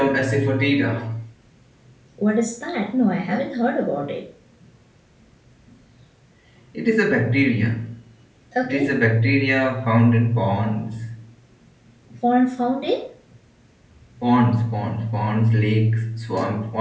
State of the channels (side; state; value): both; identical; correlation 1.00